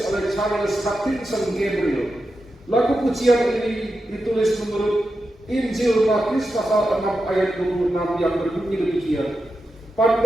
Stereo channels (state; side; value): normal; both; correlation 0.89